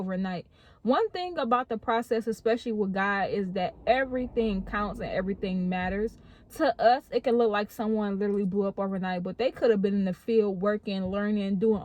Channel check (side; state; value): both; identical; correlation 1.00